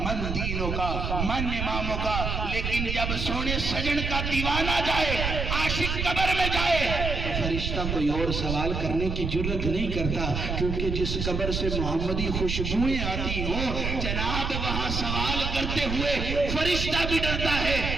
دینوں کا، من اماموں کا، لیکن جب سونے سجن کا دیوانہ جائے، عاشق قبر میں جائے تو فرشتہ کوئی اور سوال کرنے کی جرت نہیں کرتا، کیونکہ جس قبر سے محمدی خوشبوئیں آتی ہوں جناب وہاں سوال کرتے ہوئے فرشتہ بھی ڈرتا ہے۔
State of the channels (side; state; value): right; noise; rumble, 2 dB below the sound